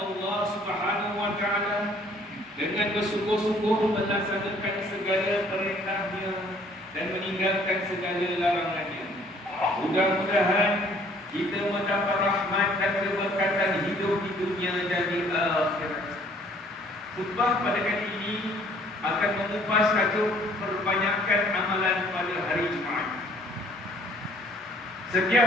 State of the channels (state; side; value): normal; both; correlation 0.58